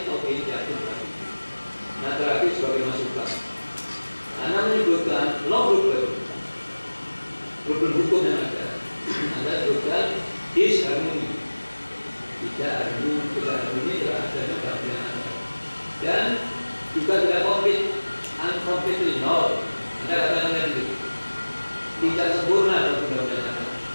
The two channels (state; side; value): inverted; both; correlation -1.00